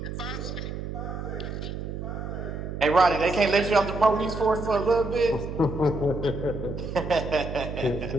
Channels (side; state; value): right; noise; hum, 6 dB below the sound